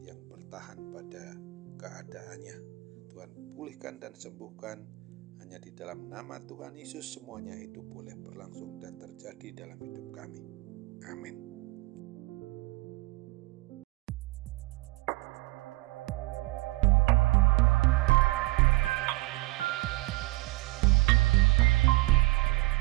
yang bertahan pada keadaannya. Tuhan pulihkan dan sembuhkan, hanya di dalam nama Tuhan Yesus semuanya itu boleh berlangsung dan terjadi dalam hidup kami. Amin.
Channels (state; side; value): quieter; left; 22.2 dB